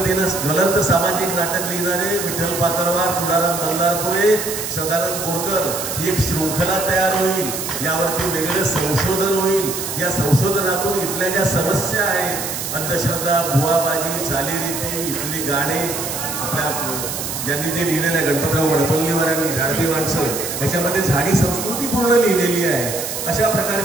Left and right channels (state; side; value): noise; right; hiss, 5 dB below the sound